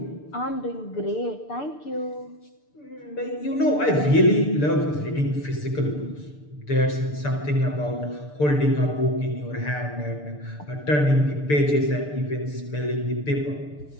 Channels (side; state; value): right; late; 6.8 ms